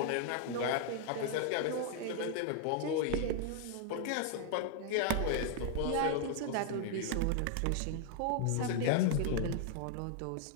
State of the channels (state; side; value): different; both; correlation 0.00